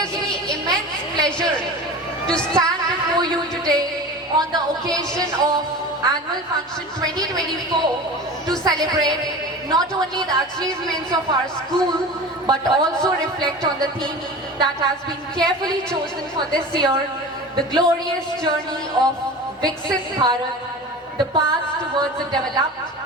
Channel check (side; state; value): both; normal; correlation 0.34